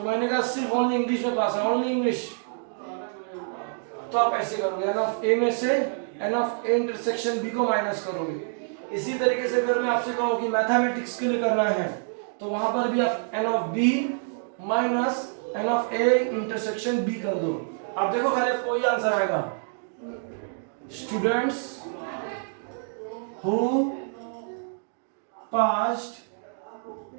मैंने कहा सिर्फ ओनली इंग्लिश में पास है, ओनली इंग्लिश। तो आप ऐसे करोगे, एन ऑफ ए में से n of A intersection B को माइनस करोगे। इसी तरीके से अगर मैं आपसे कहूं कि मैथमेटिक्स के लिए करना है, तो वहां पर भी आप n of B minus n of A intersection B कर दो। आप देखो खाली कोई आंसर आएगा। Students who passed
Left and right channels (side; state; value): left; silent; digital silence